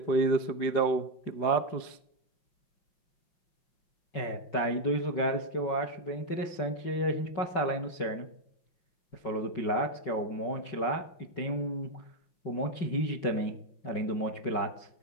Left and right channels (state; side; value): late; right; 5.3 ms